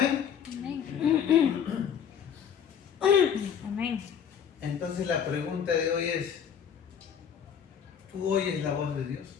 Amén. Amén. Entonces la pregunta de hoy es, ¿tú oyes la voz de Dios?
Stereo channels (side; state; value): right; quieter; 8.0 dB